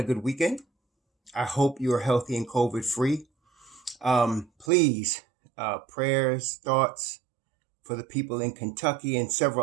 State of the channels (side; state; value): left; drops out; at 4.7 s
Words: good weekend. I hope you are healthy and COVID free. Please, prayers, thoughts for the people in Kentucky and